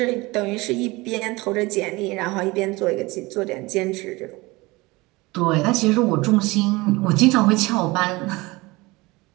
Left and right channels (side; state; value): left; quieter; 22.6 dB